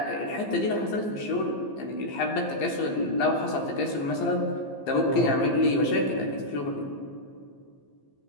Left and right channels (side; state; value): right; late; 15 ms